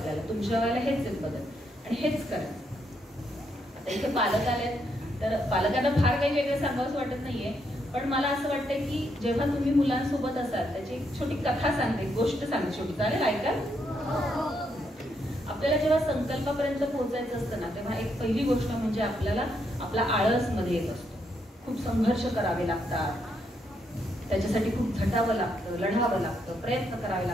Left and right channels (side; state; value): both; normal; correlation 0.77